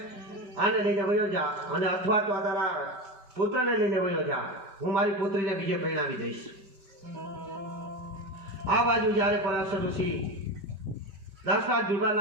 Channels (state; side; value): late; left; 5.0 ms